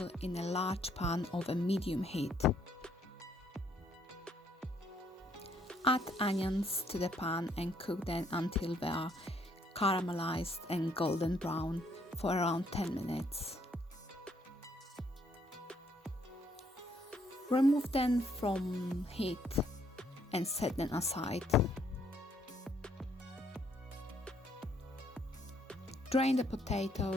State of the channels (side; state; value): both; normal; correlation 0.69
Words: in a large pan of a medium heat. Add onions to the pan and cook them until they are caramelized and golden brown for around 10 minutes. Remove them from heat and set them aside. Drain the